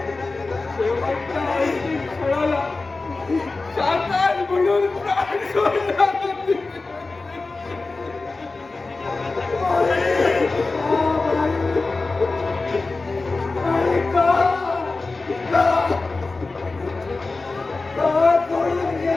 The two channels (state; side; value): quieter; right; 3.6 dB